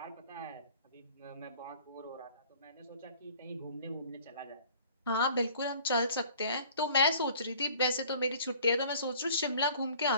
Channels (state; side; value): inverted; both; correlation -0.51